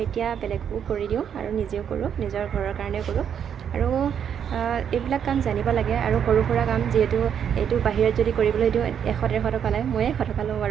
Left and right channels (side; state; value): left; quieter; 8.3 dB